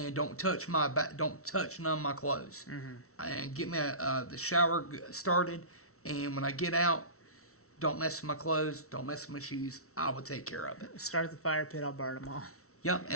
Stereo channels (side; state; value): right; late; 0.63 ms